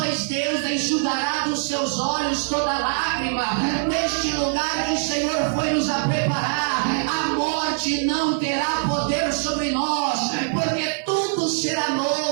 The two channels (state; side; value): silent; left; 59 dB below the other